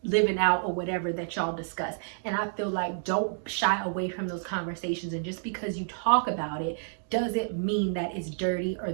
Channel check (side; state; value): left; silent; digital silence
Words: living out or whatever that y'all discuss. And I feel like don't shy away from those conversations. And just because you talk about it doesn't mean that it's dirty, or